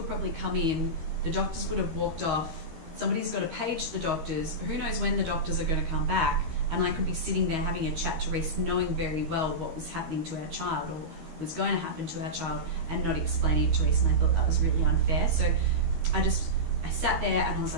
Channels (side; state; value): left; late; 13 ms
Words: probably come in, the doctors would have walked off, somebody's got to page the doctors, who knows when the doctors are going to come back, and I could be sitting there having a chat to Reese knowing very well what was happening to our child or was going to happen to our child and not explaining it to Reese, and I thought that was really unfair. So I sat there and I was